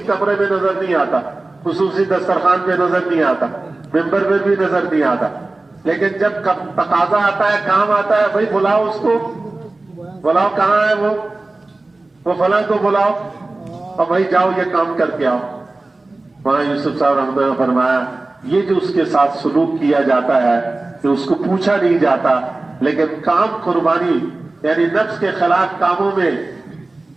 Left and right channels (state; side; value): quieter; left; 3.1 dB